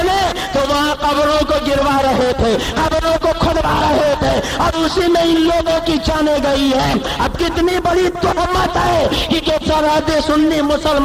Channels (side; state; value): both; identical; correlation 1.00